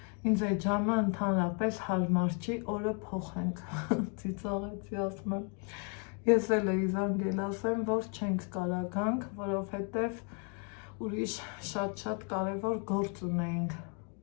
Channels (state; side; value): quieter; right; 37.8 dB